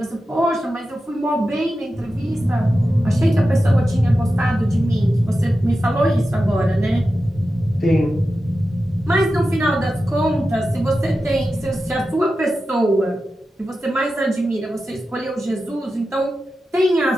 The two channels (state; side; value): normal; both; correlation 0.92